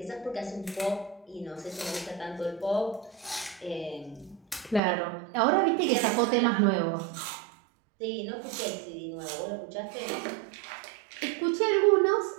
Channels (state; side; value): drops out; left; at 4.8 s